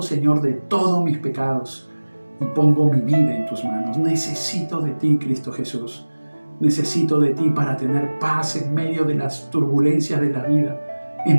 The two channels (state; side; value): inverted; both; correlation -1.00